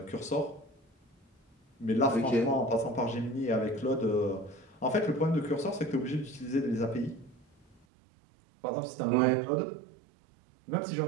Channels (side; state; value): left; drops out; at 7.9 s